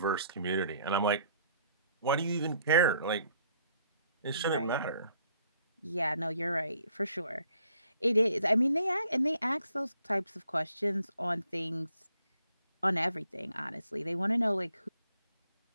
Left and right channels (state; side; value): inverted; both; correlation -0.65